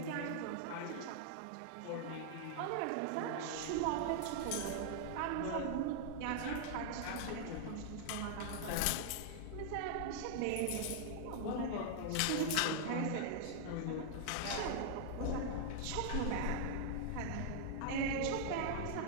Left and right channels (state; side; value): different; both; correlation -0.01